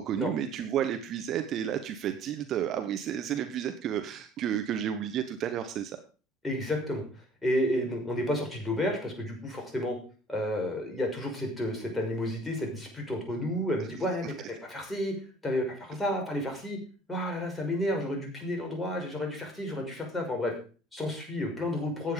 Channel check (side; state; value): both; normal; correlation 0.52